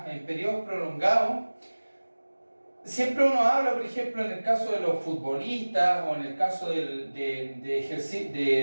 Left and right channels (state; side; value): inverted; both; correlation -1.00